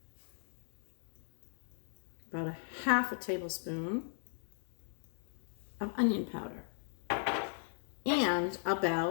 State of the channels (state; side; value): silent; right; digital silence